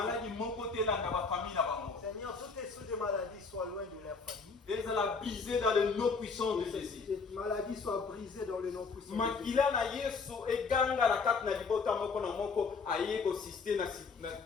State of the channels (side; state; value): right; quieter; 4.8 dB